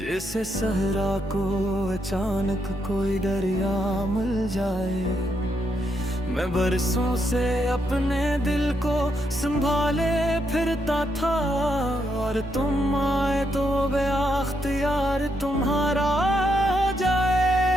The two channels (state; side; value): normal; both; correlation 0.79